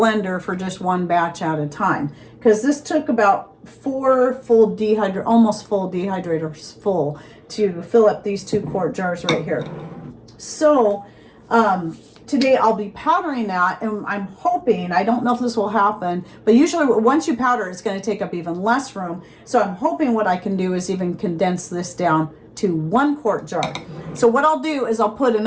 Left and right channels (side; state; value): both; identical; correlation 1.00